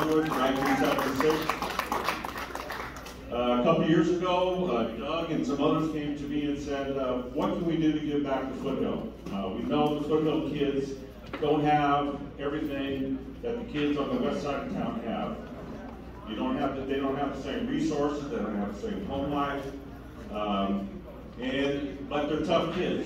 in 1976. A couple years ago, Doug and some others came to me and said, what can we do to give back to Foothill? We know the Foothill kids don't have everything that the kids on the west side of town have. They don't have the same resources, they don't have the same home life, but they're tough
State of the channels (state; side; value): identical; both; correlation 1.00